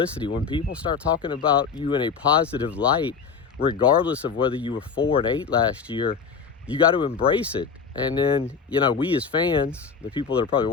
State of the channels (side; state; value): right; quieter; 5.8 dB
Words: When people start talking about you in a positive light, regardless of whether you were 4-8 last year, you got to embrace it. And then, we as fans, the people that are probably